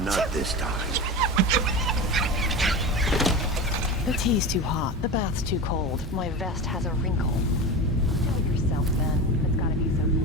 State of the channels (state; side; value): normal; both; correlation 0.26